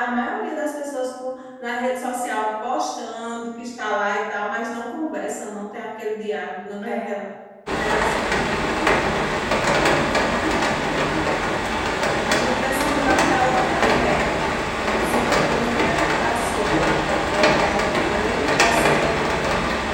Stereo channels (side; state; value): both; identical; correlation 1.00